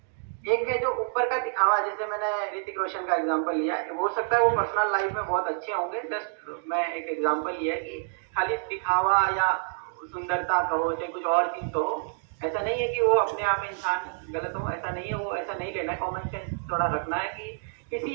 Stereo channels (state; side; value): silent; left; digital silence